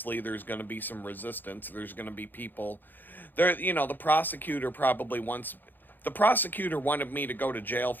there's going to be some resistance. There's going to be people there. The prosecutor wanted me to go to jail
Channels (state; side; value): late; right; 0.089 ms